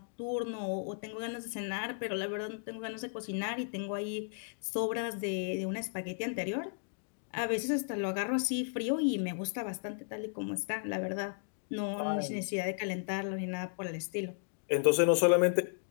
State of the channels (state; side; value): silent; right; digital silence